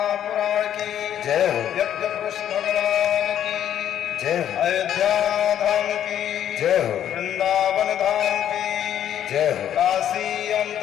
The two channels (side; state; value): right; quieter; 10.4 dB